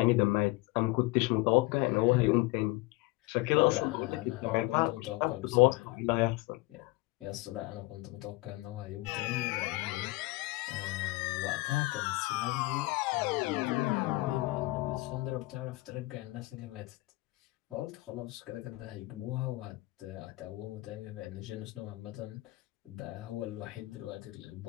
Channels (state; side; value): quieter; right; 21.6 dB